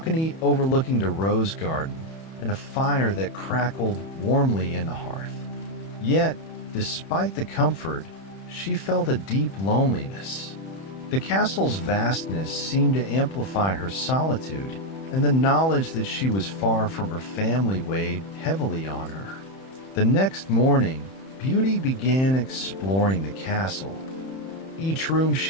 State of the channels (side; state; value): right; late; 31 ms